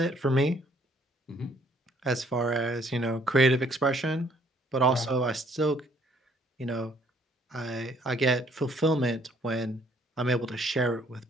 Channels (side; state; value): both; normal; correlation 0.63